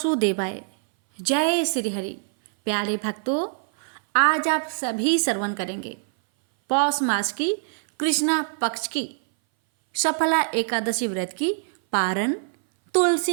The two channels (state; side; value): silent; left; 60 dB below the other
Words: जय श्री हरि। प्यारे भक्तों, आज आप सभी श्रवण करेंगे पौष मास की कृष्णा पक्ष की सफला एकादशी व्रत की पारण